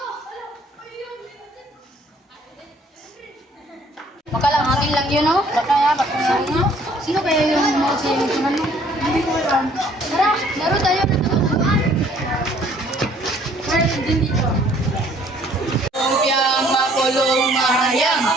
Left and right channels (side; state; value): both; normal; correlation 0.59